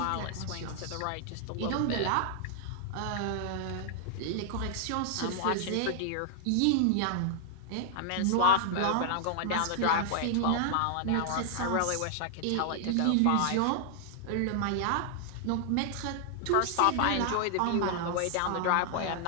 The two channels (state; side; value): different; both; correlation 0.00